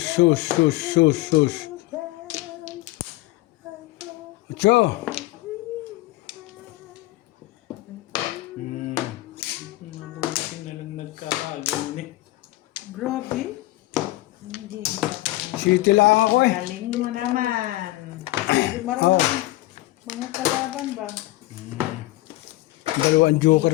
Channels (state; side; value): quieter; right; 18.7 dB